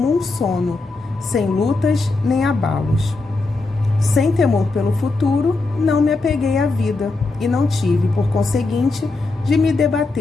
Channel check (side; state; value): right; quieter; 3.5 dB